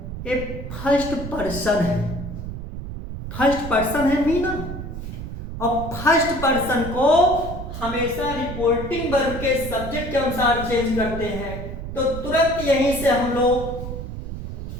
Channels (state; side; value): noise; right; rumble, 8 dB below the sound